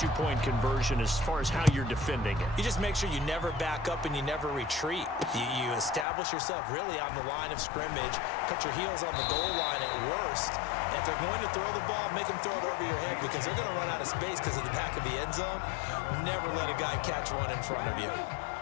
conversion as far as how you're defending it? You just make sure you never back up and you never retreat. You establish yourself really on the line of scrimmage, put your heels on the goal line at worst, and if they're going to throw the ball, make them throw it over your head because they're going to run out of space because of the back of the end zone. Never let a guy catch one in front of you.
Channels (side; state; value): right; drops out; at 6.1 s